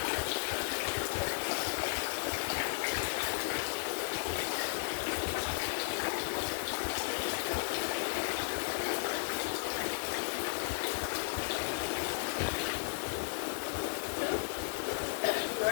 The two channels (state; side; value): silent; right; digital silence